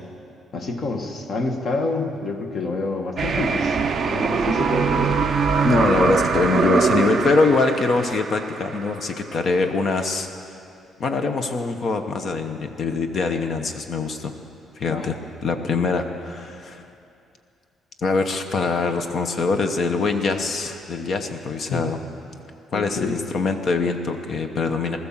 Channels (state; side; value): normal; both; correlation 0.71